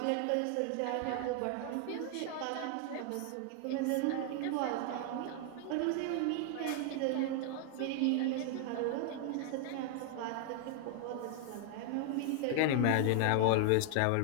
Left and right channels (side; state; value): both; different; correlation 0.00